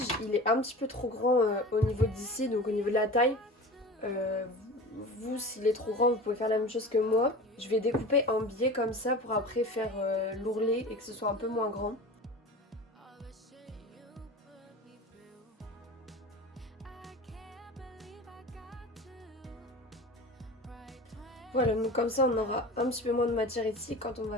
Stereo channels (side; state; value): both; normal; correlation 0.34